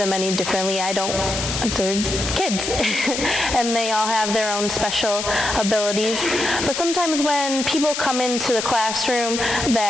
any differently. They're kids, and they all have their own special abilities. But sometimes when people come into the classroom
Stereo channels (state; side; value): noise; left; hiss, 4 dB below the sound